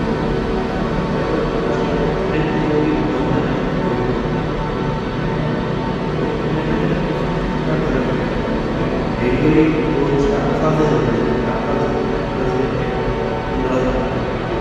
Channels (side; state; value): both; identical; correlation 1.00